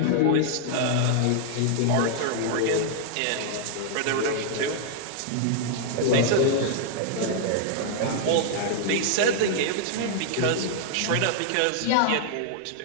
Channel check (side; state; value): both; different; correlation -0.01